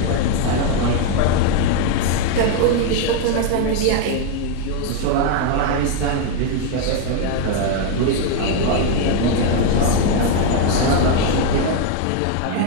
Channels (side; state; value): both; different; correlation 0.01